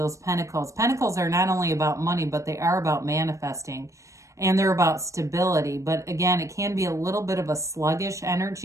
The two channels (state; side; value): late; left; 0.15 ms